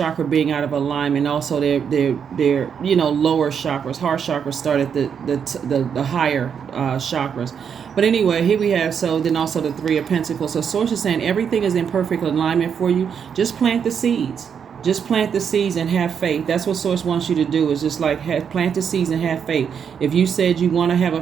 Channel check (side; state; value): left; quieter; 7.3 dB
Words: being out of alignment, also their lower chakras. Heart chakra started the higher chakras. But anyway, here we have, so then also the 3 of Pentacles. So source is saying everything is in perfect alignment for you. Just plant the seeds. Just plant the seeds and have faith. That's what source wants you to do, is just like plant the seeds and have faith. If you said you want to have